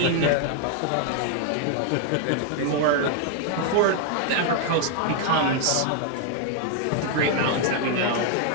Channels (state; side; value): different; both; correlation 0.01